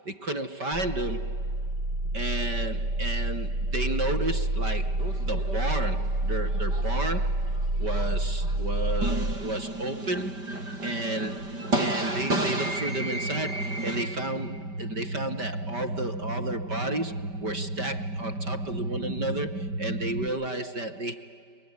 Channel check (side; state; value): left; late; 5.1 ms